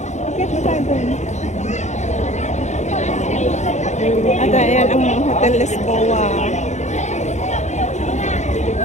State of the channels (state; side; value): late; right; 0.34 ms